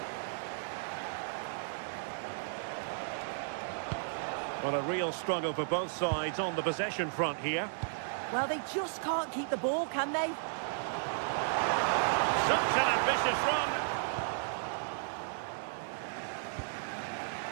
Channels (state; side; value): silent; left; digital silence